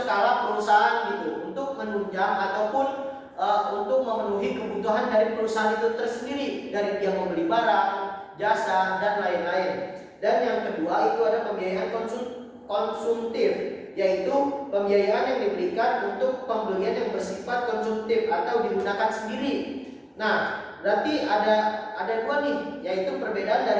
perusahaan gitu, untuk menunjang ataupun untuk memenuhi kebutuhan dari perusahaan itu tersendiri, dari dia membeli barang, jasa, dan lain-lain. Dan yang kedua itu ada pembiayaan konsumtif, yaitu pembiayaan yang diberikan untuk pembelian yang bersifat konsumtif atau digunakan sendiri. Nah, berarti ada dua nih, yaitu perbedaan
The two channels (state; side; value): identical; both; correlation 1.00